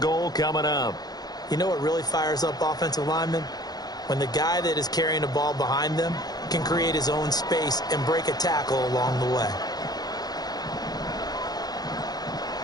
goal coming up. You know what really fires up offensive linemen? When the guy that is carrying the ball behind them can create his own space and break a tackle along the way.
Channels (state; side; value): late; right; 0.19 ms